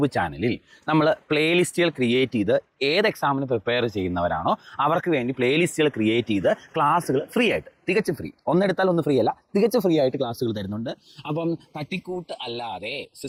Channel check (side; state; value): both; identical; correlation 1.00